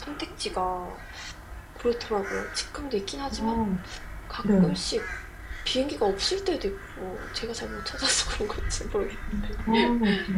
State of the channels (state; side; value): identical; both; correlation 1.00